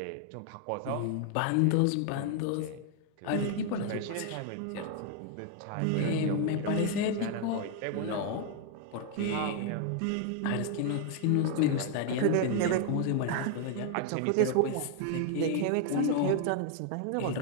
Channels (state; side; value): different; both; correlation 0.00